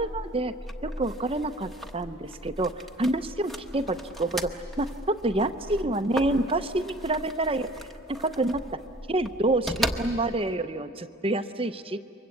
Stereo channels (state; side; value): normal; both; correlation 0.49